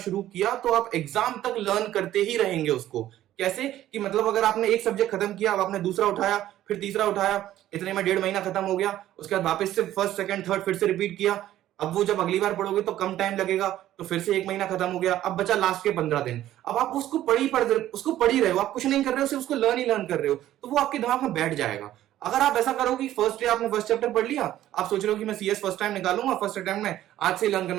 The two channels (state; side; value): quieter; left; 13.2 dB